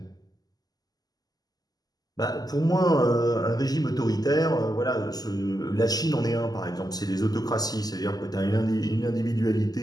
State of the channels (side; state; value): right; late; 0.19 ms